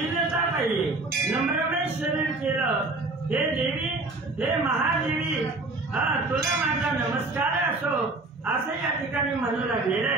पाहिजे नम्रमय शरीर केलं। हे देवी हे महादेवी तुला माझा नमस्कार असो असं या ठिकाणी म्हणू लागलेलं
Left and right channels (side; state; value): left; quieter; 3.2 dB